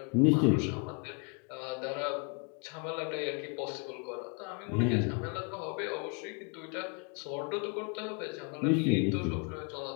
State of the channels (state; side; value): quieter; right; 37.0 dB